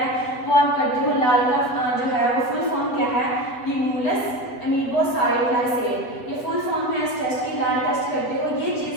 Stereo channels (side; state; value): right; late; 8.3 ms